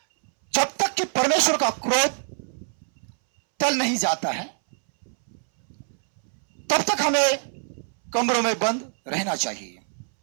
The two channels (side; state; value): left; silent; 62 dB below the other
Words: जब तक कि परमेश्वर का क्रोध टल नहीं जाता है, तब तक हमें कमरों में बंद रहना चाहिए।